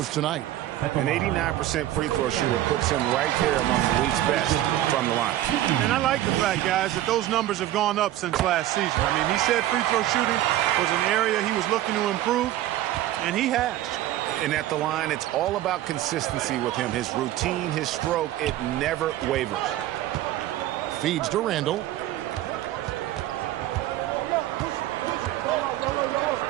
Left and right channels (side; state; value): left; quieter; 13.9 dB